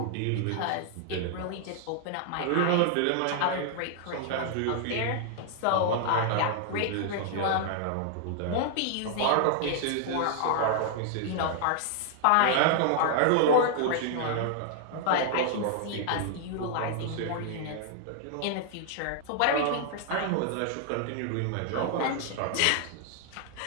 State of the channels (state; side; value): different; both; correlation -0.01